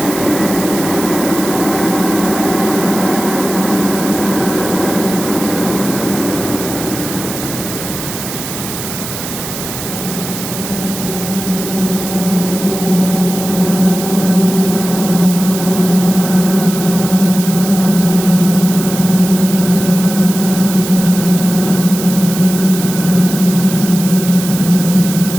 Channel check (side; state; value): right; noise; hiss, 8 dB below the sound